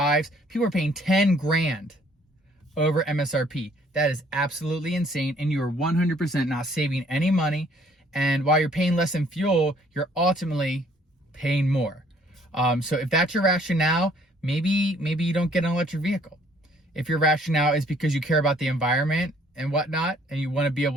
People are paying 10 grand over MSRP. That is absolutely insane, and you are 100% not saving any money. And while you're paying less in fuel, you're ultimately paying more. So if that's your rationale, maybe you don't get an electric vehicle. If your rationale is because you care about the environment and whatnot, and you want to be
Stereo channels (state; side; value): normal; both; correlation 0.61